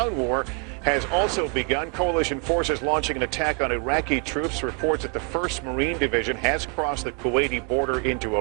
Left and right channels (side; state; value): left; quieter; 35.1 dB